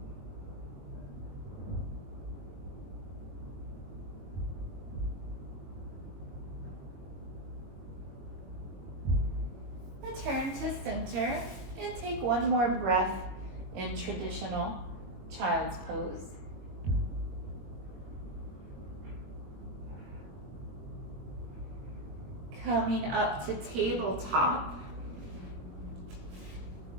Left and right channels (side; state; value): left; late; 21 ms